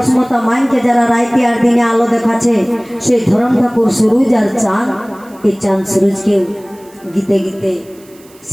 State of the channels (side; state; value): right; noise; hiss, 27 dB below the sound